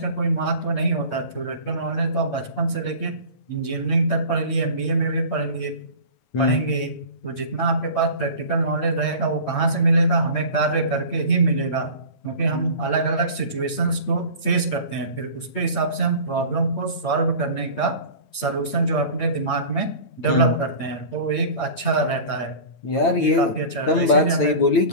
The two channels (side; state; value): right; late; 8.6 ms